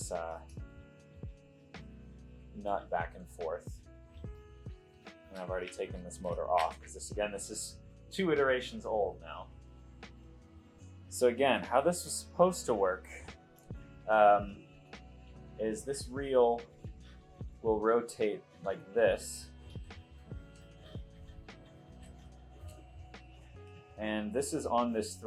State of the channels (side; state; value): both; identical; correlation 1.00